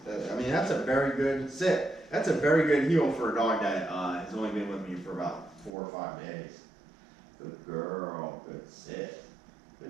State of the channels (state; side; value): drops out; left; at 5.7 s